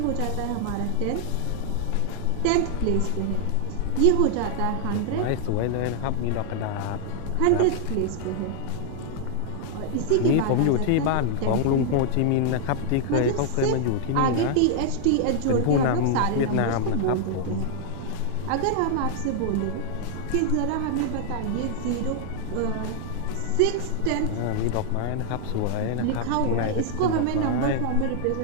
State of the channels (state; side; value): different; both; correlation -0.01